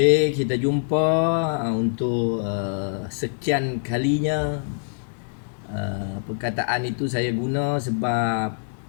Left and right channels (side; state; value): right; silent; digital silence